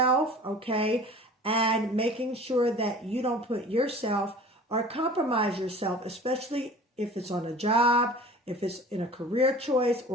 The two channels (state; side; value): normal; both; correlation 0.43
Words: okay, and making sure that you don't put yourself or compromise yourself, especially if it's on a job, if it's in a career choice